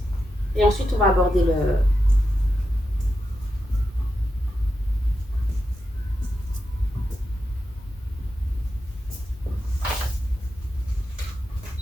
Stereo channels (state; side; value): normal; both; correlation 0.88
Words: et ensuite on va aborder le...